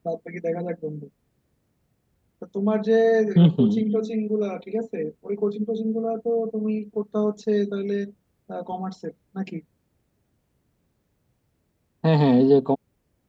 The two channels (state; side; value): identical; both; correlation 1.00